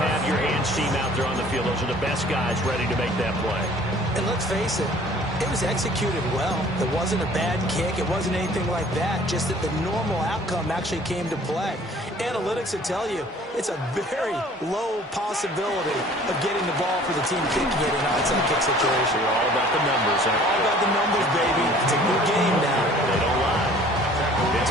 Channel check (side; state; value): both; normal; correlation 0.51